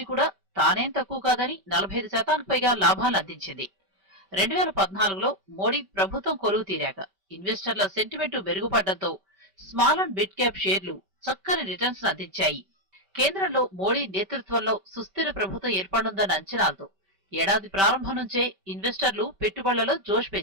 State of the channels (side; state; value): left; late; 5.2 ms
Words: కూడా తానేం తక్కువ కాదని 45%కి పైగా లాభాలు అందించింది. 2014లో మోడీ ప్రభుత్వం కొలువు తీరాక ఇన్వెస్టర్ల సెంటిమెంట్ మెరుగుపడడంతో స్మాల్ అండ్ మిడ్ క్యాప్ షేర్లు చక్కని రిటర్న్స్ అందించాయి. కేంద్రంలో మోడీ నేతృత్వంలో సుస్థిర ప్రభుత్వం ఏర్పడుందన్న అంచనాలతో ఏడాది ప్రారంభం నుంచే ఇన్వెస్టర్లు పెట్టుబడులలో జోష్